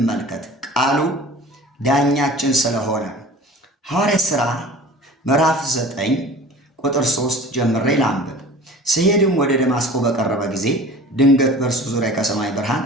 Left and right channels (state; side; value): normal; both; correlation 0.42